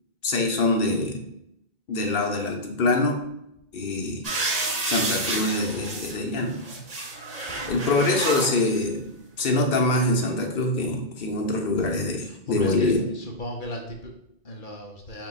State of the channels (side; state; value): right; late; 1.9 ms